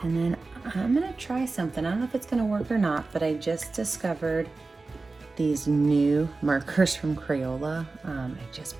And then I'm gonna try something. I don't know if it's gonna work or not, but I just discovered these new markers from Crayola. I just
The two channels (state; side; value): quieter; left; 3.7 dB